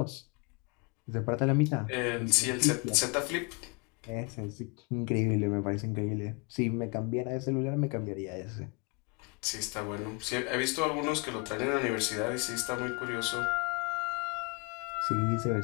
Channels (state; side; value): quieter; right; 31.3 dB